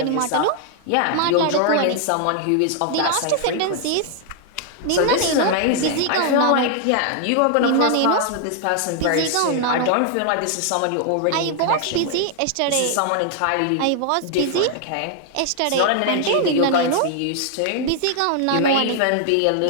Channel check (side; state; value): both; different; correlation 0.00